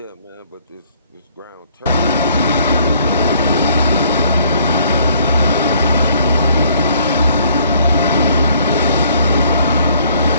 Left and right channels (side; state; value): both; inverted; correlation -0.62